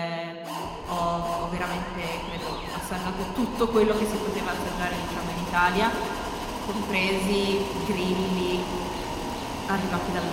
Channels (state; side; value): identical; both; correlation 1.00